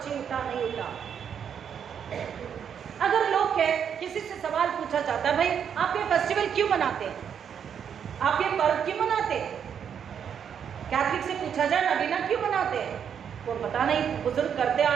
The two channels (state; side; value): quieter; left; 7.9 dB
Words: नहीं उठा। अगर लोग के किसी से सवाल पूछा जाता है, भाई आप ये फेस्टिवल क्यों मनाते हैं, आप ये पर्व क्यों मनाते हैं, कैथलिक से पूछा जाए नगीना क्यों मनाते हैं, वो पता नहीं, बुजुर्ग करते आ